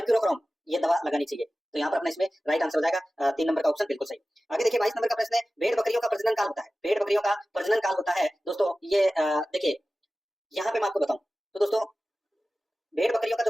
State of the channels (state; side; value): normal; both; correlation 0.96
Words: ये दवा लगानी चाहिए। तो यहाँ पर अपना इसमें राइट आंसर हो जाएगा 3 नंबर का ऑप्शन बिल्कुल सही। आगे देखिए 22 नंबर का प्रश्न है, भेड़ बकरियों का प्रजनन काल होता है, भेड़ बकरियों का प्रजनन काल होता है दोस्तों। ये देखिए यहाँ पे मैं आपको बताऊं तो दोस्तों भेड़ बकरियों का जो